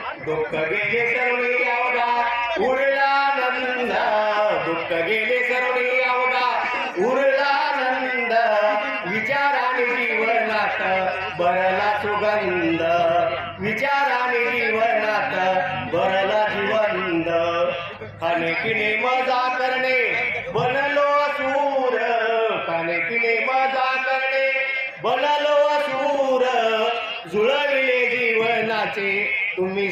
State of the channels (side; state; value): both; identical; correlation 1.00